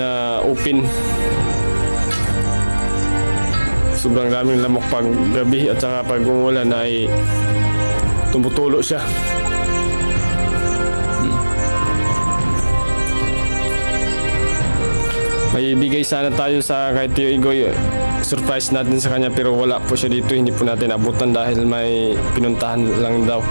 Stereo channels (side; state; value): both; inverted; correlation -1.00